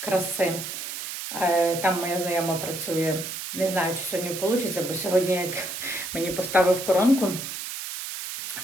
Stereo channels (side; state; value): right; noise; hiss, 7 dB below the sound